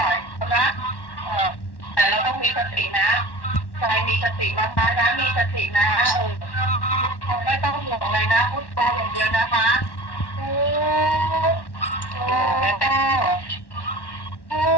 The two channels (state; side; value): late; right; 1.1 ms